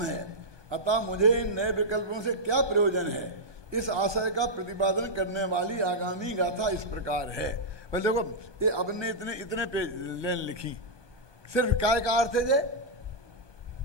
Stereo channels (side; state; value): left; late; 1.2 ms